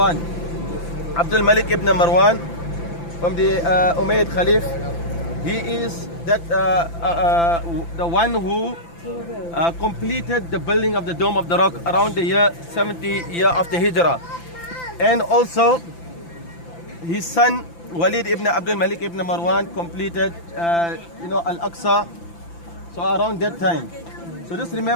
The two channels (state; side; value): late; right; 5.9 ms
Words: Abdul Malik ibn Marwan, from the Umayyad Khalif, he is that the one who completed the building of the dome of the rock around the year 70 year after Hijrah. And also his son Walid ibn Abdul Malik ibn Marwan completed Al-Aqsa, so around that time. So So just